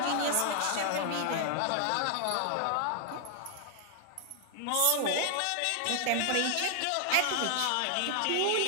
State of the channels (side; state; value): both; different; correlation 0.00